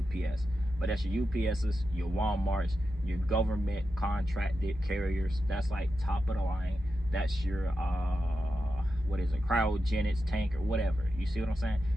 but that's your UPSs, your Walmarts, your government contracted carriers. That's like top of the line. That's your what is it, cryogenics tank or whatever. You see what I'm saying?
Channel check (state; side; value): normal; both; correlation 0.89